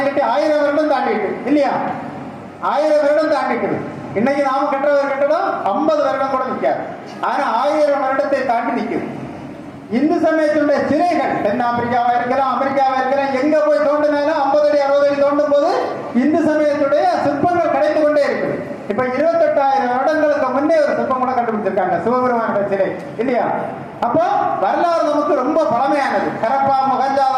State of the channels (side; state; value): both; identical; correlation 1.00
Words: கட்டி 1000 வருடம் தாண்டிட்டு இல்லையா? 1000 வருடம் தாண்டிட்டு. இன்னைக்கு நாம கட்டுற ஒரு கட்டடம் 50 வருடம் கூட நிற்காது. ஆனா 1000 வருடத்தை தாண்டி நிற்குது. இந்து சமயத்தினுடைய சிலைகள் தென் ஆப்பிரிக்காவா இருக்கலாம், அமெரிக்காவா இருக்கலாம், எங்க போய் தோண்டினாலும் 50 அடி 60 அடி தோண்டும் போது இந்து சமயத்துடைய சிற்பங்கள் கிடைத்து கொண்டே இருக்குது. இப்ப 28,000 வருடங்களுக்கு முன்னே ஒரு சிற்பம் கூட கண்டுபிடிச்சிருக்காங்க, சிவபெருமானுடைய சிலை இல்லையா? அப்போ வரலாறு நமக்கு ரொம்ப பழமையானது. ஹரப்பா,